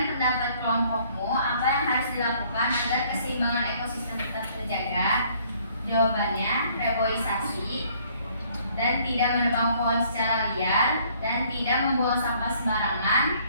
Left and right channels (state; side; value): inverted; both; correlation -0.61